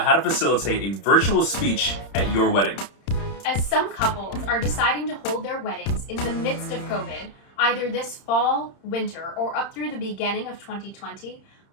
how to facilitate a virtual speech at your wedding. As some couples are deciding to hold their weddings in the midst of COVID, either this fall, winter, or up through the beginning of 2020,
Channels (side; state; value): right; late; 31 ms